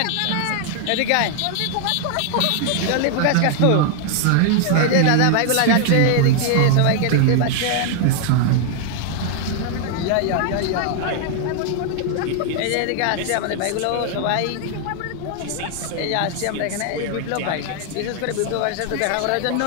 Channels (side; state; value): both; different; correlation 0.00